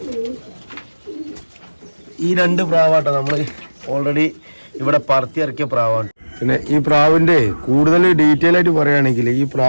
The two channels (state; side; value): inverted; both; correlation -1.00